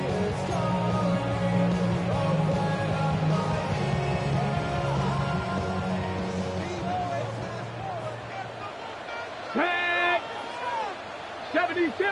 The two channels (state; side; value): identical; both; correlation 1.00